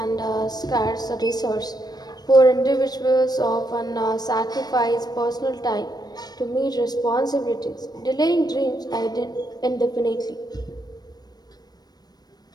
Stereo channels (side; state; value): right; late; 0.19 ms